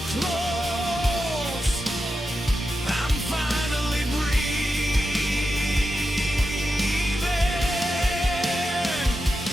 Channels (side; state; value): both; normal; correlation 0.89